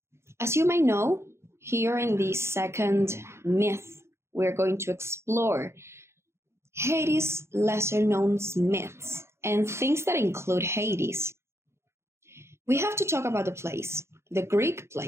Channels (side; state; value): left; late; 0.13 ms